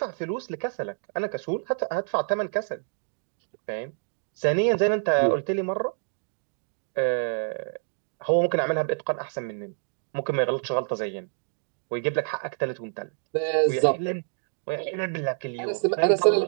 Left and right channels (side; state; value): left; silent; digital silence